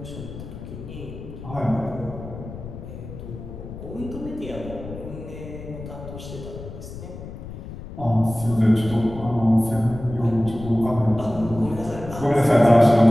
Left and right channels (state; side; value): noise; left; rumble, 12 dB below the sound